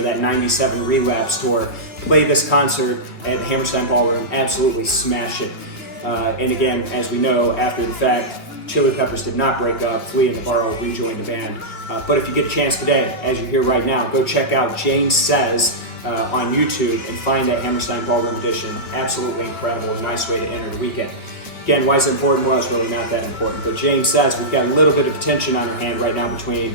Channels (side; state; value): right; late; 2.9 ms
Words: that 97 Relapse tour, played this concert at the Hammerstein Ballroom, absolutely smashed it. And again, as we know, after the fact, Chili Peppers did not break up. Flea and Navarro rejoined the band. But if you get a chance today, as you hear right now, go check out Jane Says on YouTube and find that Hammerstein Ballroom edition. Absolutely incredible. A nice way to enter the weekend. Again, why is it important? Well, it's really not that important. But Jane Says we've got a little bit of tension on our hand right now between